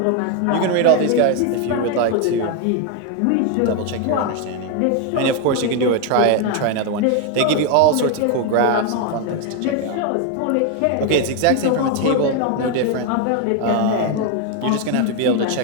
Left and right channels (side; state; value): both; different; correlation 0.01